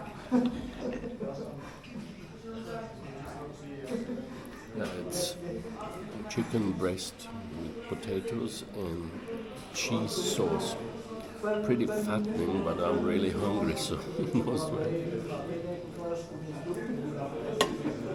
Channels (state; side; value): identical; both; correlation 1.00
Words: It's chicken breast with potatoes and cheese sauce. Pretty fattening, but I'm really hungry, so most way.